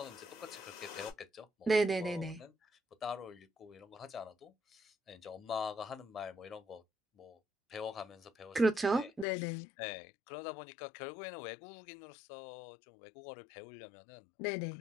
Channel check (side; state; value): right; drops out; at 9.2 s